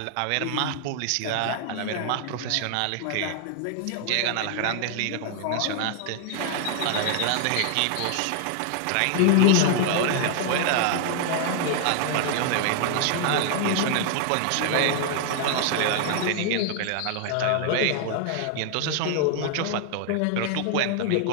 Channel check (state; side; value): different; both; correlation 0.00